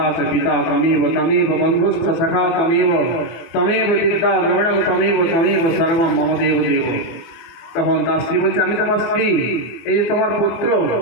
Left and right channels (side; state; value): right; late; 24 ms